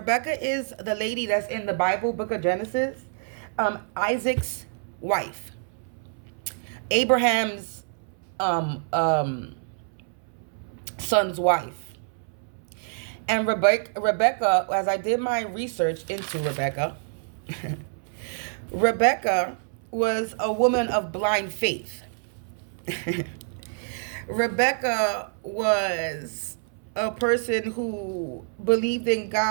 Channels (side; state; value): left; silent; 60 dB below the other